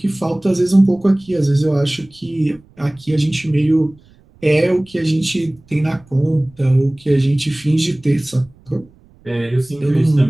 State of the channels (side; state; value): right; noise; rumble, 28 dB below the sound